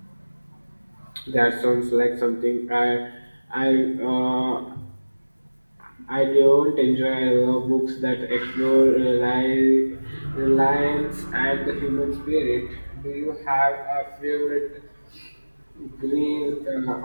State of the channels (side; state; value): both; inverted; correlation -1.00